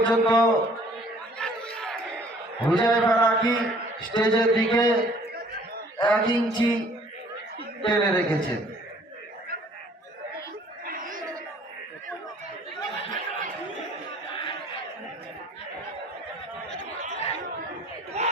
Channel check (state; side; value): normal; both; correlation 0.56